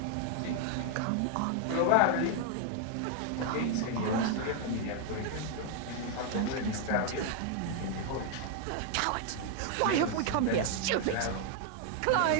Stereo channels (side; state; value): both; different; correlation 0.01